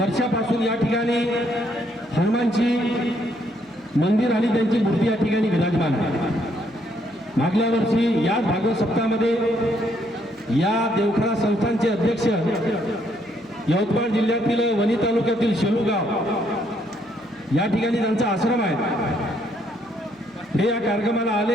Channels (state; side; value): noise; right; hum, 30 dB below the sound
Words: या ठिकाणी हनुमानची मंदिर आणि त्यांची मूर्ती या ठिकाणी विराजमान आहे। मागल्या वर्षी याच भागवत सप्ताहामध्ये या देवखरा संस्थानचे अध्यक्ष यवतमाळ जिल्ह्यातील वणी तालुक्यातील शेलूगाव या ठिकाणी त्यांचा आश्रम आहे, हे या कार्यक्रमाला